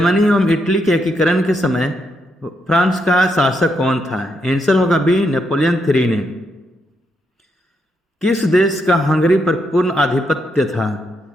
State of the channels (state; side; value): normal; both; correlation 0.79